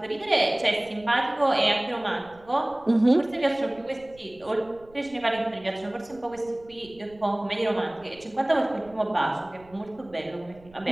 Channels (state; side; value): noise; right; rumble, 25 dB below the sound